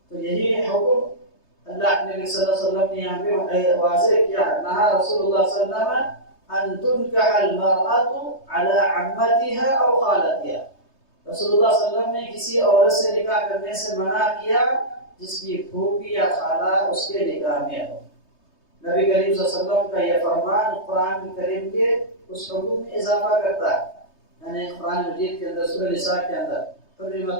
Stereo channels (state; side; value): late; right; 3.2 ms